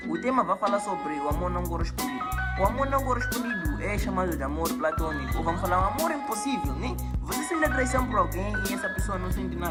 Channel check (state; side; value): identical; both; correlation 1.00